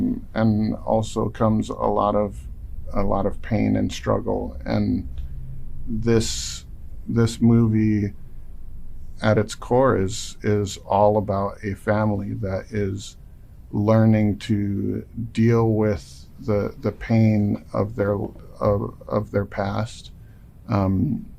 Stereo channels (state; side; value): identical; both; correlation 1.00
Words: also comes a lot of pain and struggle. And this movie at its core is all about a family that is learning to deal with the pain of their past,